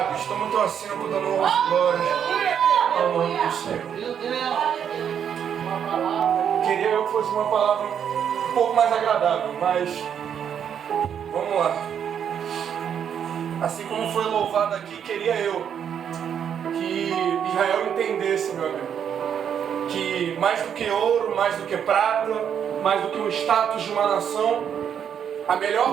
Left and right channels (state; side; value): quieter; left; 8.4 dB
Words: Toma o teu assento, dando honras e glórias ao nome do Senhor. Queria eu que fosse uma palavra um pouco mais agradável, mas vamos lá. Assim como foi louvado aqui, queria eu que Israel entendesse, meu amigo, que mais do que ouro, mais do que prata, mais do que o status de uma nação, a